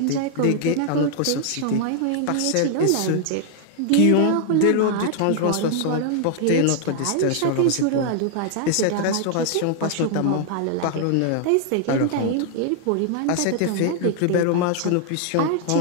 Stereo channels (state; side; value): different; both; correlation 0.00